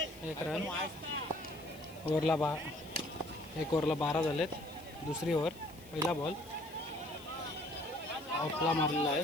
एक रन. ओव्हरला एक ओव्हरला 12 झालेत. दुसरी ओव्हर. पहिला बॉल ऑफला मारलेला आहे.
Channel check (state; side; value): noise; left; hiss, 21 dB below the sound